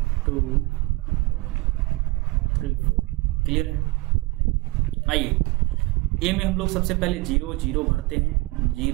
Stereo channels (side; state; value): left; quieter; 22.9 dB